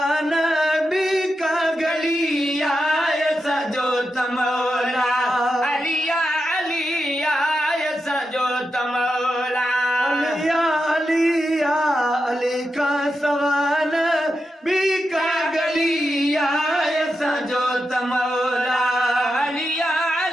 भी का गलिया सजो तमौला अलिया अलिया सजो तमौला अलिया अलिया अली का सवान भी का गलिया सजो तमौला अलिया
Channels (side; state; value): both; normal; correlation 0.88